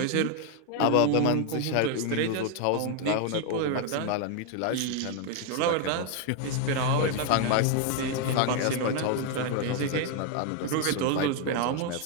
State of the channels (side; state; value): both; different; correlation 0.01